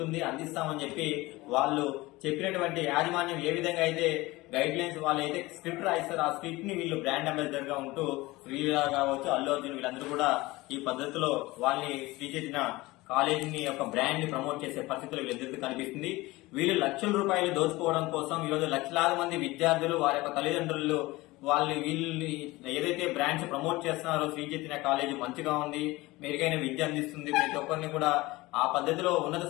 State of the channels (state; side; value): quieter; right; 20.5 dB